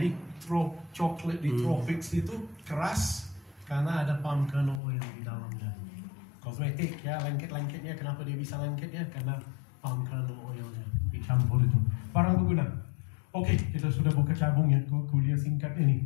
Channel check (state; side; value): drops out; right; at 4.8 s